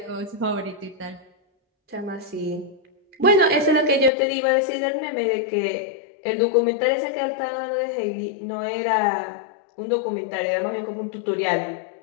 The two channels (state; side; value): drops out; right; at 4.1 s